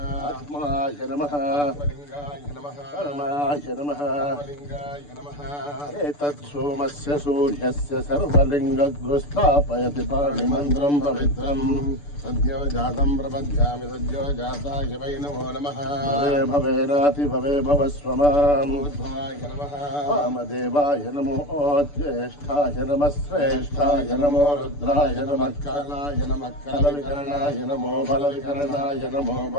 ఆత్మాయ నమః. లింగాయ నమః. పరమాయ నమః. లింగాయ నమః. ఏతత్ సోమస్య సూర్యస్య సర్వలింగగ్గు స్థాపయతి పాణిమంత్రం పవిత్రం सद्यो जातं प्रपद्यामि सद्यो जाताय वै नमो नमः भवे भवेनाति भवे भवस्व माम् उद्भवाय नमः वामदेवाय नमो ज्येष्ठाय नमः श्रेष्ठाय नमो रुद्राय नमः कालाय नमः कालविकरणाय नमो बलविकरणाय नमो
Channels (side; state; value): right; late; 6.9 ms